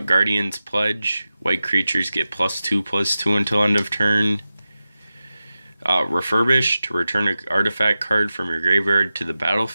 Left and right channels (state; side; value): inverted; both; correlation -0.94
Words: Pledge, white creatures get +2/+2 until end of turn. Refurbish, to return an artifact card from your graveyard to the